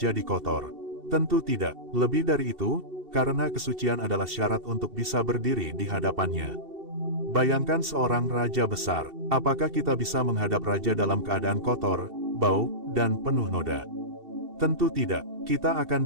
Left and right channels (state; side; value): late; left; 2.7 ms